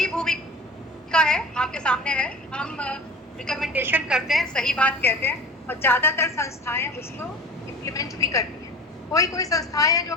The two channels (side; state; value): both; normal; correlation 0.36